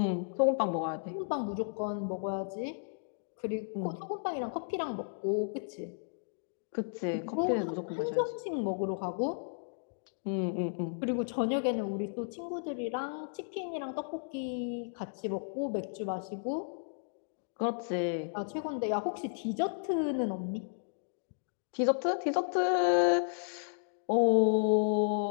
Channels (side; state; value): right; silent; digital silence